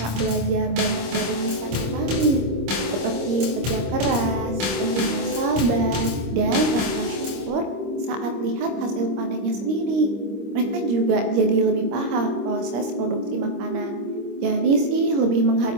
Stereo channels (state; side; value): late; left; 26 ms